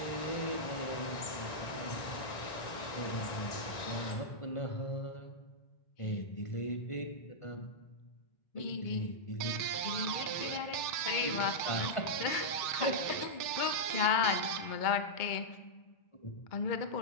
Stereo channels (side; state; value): right; late; 2.2 ms